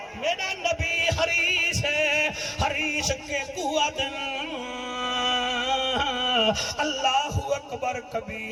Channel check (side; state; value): both; identical; correlation 1.00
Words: میرا نبی حریص ہے حریص کے قوت اللہ اکبر